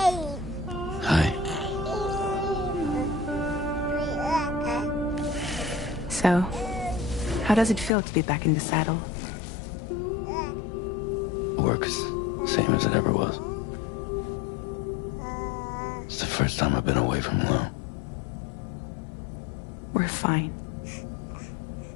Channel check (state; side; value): drops out; right; at 7.9 s